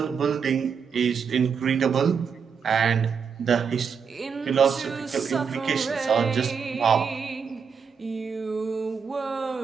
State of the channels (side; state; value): left; quieter; 6.2 dB